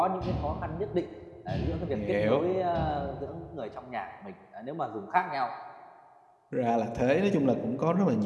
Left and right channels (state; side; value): identical; both; correlation 1.00